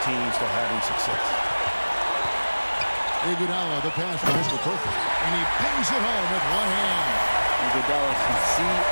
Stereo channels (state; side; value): inverted; both; correlation -1.00